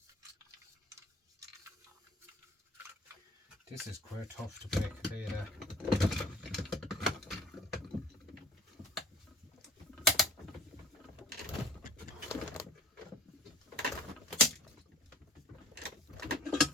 This is quite tough to break, I'll tell you that.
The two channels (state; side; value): normal; both; correlation 0.50